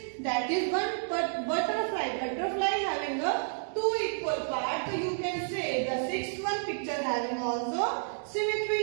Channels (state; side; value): silent; left; digital silence